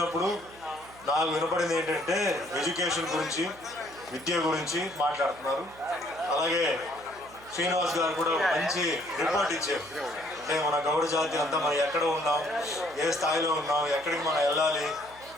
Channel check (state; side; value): noise; right; hum, 22 dB below the sound